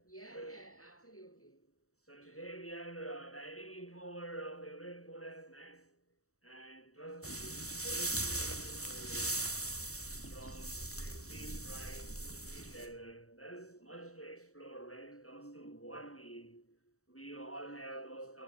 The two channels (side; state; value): right; late; 0.64 ms